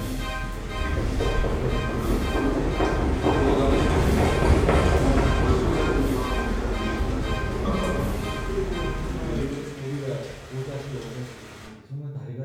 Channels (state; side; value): identical; both; correlation 1.00